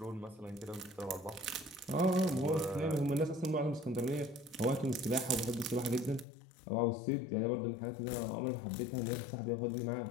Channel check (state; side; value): drops out; right; at 6.2 s